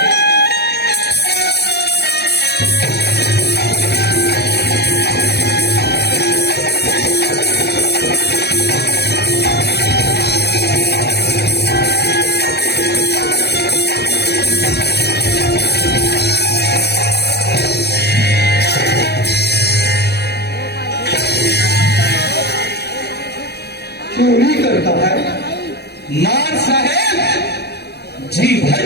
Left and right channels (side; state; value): right; late; 0.48 ms